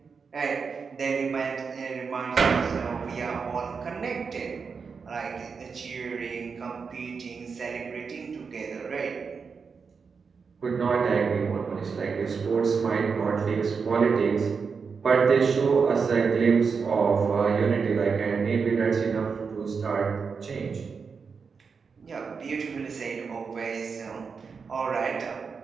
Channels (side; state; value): left; quieter; 5.5 dB